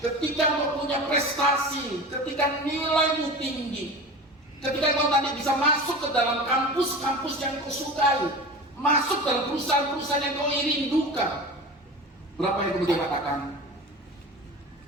engkau punya prestasi, ketika nilaimu tinggi, ketika kau nanti bisa masuk ke dalam kampus-kampus yang kau sukai, masuk dalam perusahaan-perusahaan yang kau rindukan, berapa yang kemudian katakan,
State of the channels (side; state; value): both; normal; correlation 0.33